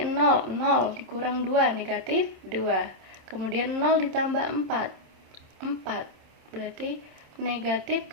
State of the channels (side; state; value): left; late; 27 ms